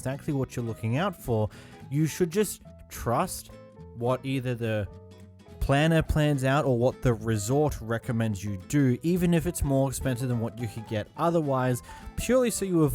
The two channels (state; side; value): identical; both; correlation 1.00